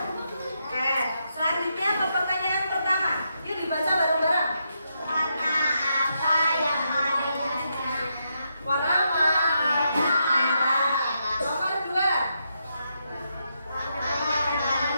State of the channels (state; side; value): inverted; both; correlation -0.82